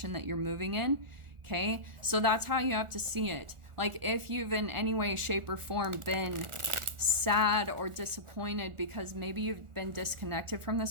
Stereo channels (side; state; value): left; late; 1.4 ms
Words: that you're moving in. Okay? So that's how you have to see it. Like if you've in any way, shape, or form been sad or disappointed because maybe you've been disconnected from